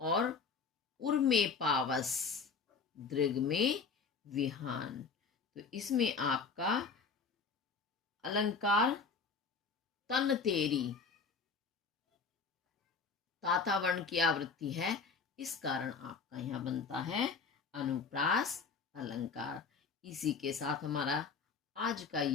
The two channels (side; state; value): right; quieter; 5.2 dB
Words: उर में पावस, दृग में विहान। तो इसमें आपका अलंकार तन तेरी, तातावर्ण की आवृत्ति है, इस कारण आपका यहाँ बनता है अनुप्रास अलंकार। इसी के साथ हमारा आज का